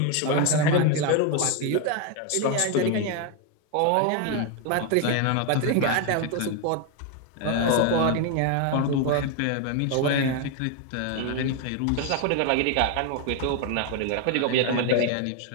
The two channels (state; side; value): different; both; correlation 0.01